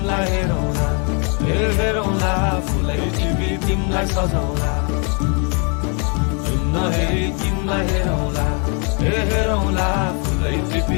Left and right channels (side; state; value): right; quieter; 36.9 dB